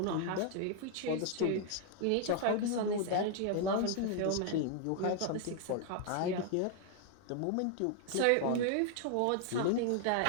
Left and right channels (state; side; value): different; both; correlation 0.00